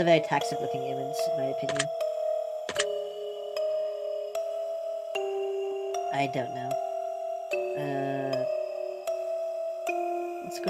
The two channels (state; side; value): identical; both; correlation 1.00